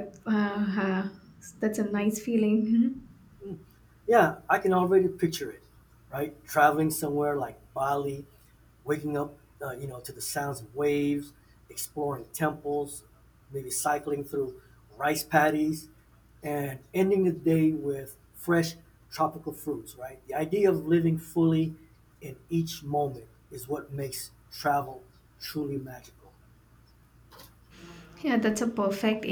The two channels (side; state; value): both; identical; correlation 1.00